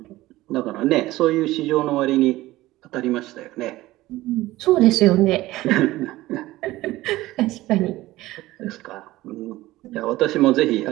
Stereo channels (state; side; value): quieter; left; 17.3 dB